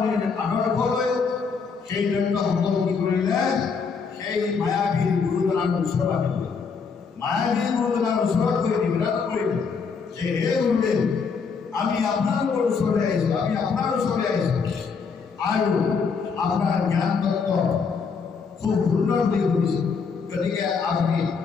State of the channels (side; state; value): right; quieter; 5.5 dB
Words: আদৰ্শ লৈ সেই দৈত্যসকল কি কৰিলে, সেই মায়াবী গুৰুজনাৰ ওচৰত আহিলে। মায়াবী গুৰুজনাৰ ওচৰত গৈ নিবেদন কৰিলে যে হে গুৰুদেৱ, আমি আপোনালোকৰ ওচৰলৈ আহিছোঁ, আমি আপোনাৰ ওচৰলৈ আহিছোঁ, আৰু আপোনাৰ জ্ঞান তত্ত্ব খুব সুন্দৰ বুলি শুনিছোঁ। গতিকে আপুনি